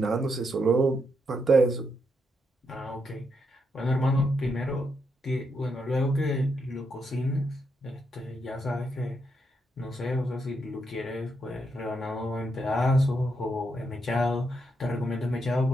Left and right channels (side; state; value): both; normal; correlation 0.80